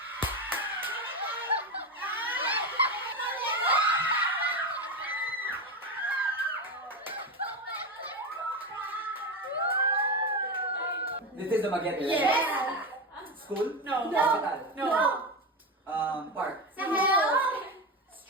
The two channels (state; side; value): normal; both; correlation 0.17